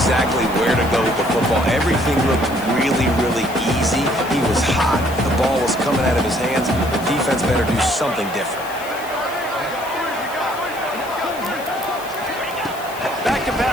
where to go with the football. Everything looked really, really easy. He was hot. The ball was coming out of his hands. The defense better do something different. Back to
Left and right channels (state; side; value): noise; left; hiss, 17 dB below the sound